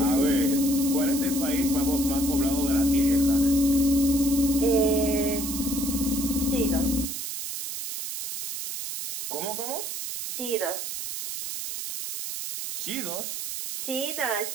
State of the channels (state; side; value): noise; right; hiss, 5 dB below the sound